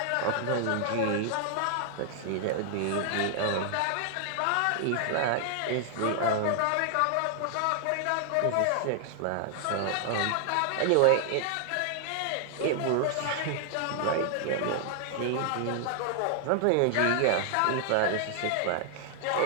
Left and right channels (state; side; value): different; both; correlation 0.00